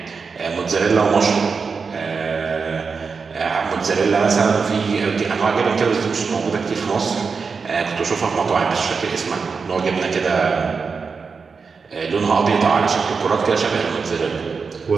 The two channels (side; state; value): left; quieter; 5.1 dB